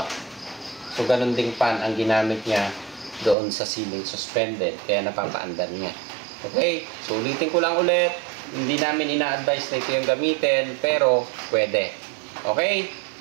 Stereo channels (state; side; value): drops out; left; at 3.4 s